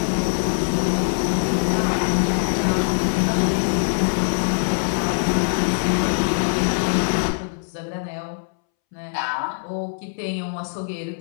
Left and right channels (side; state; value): right; silent; 64 dB below the other